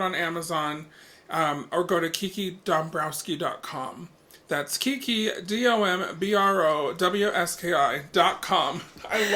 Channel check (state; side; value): identical; both; correlation 1.00